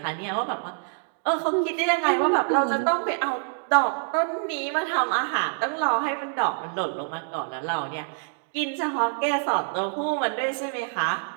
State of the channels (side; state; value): left; silent; 61 dB below the other